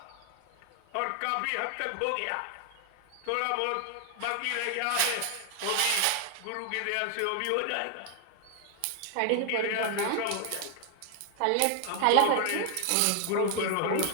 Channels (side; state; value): both; different; correlation 0.00